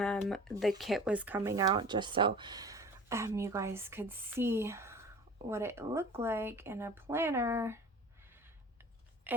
kit was coming out, just so you guys could see what it looked like in a planner,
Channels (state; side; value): normal; both; correlation 0.41